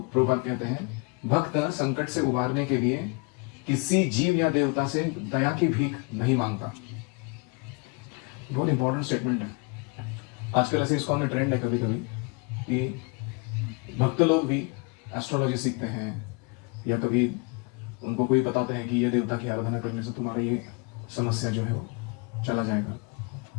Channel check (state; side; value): quieter; right; 31.5 dB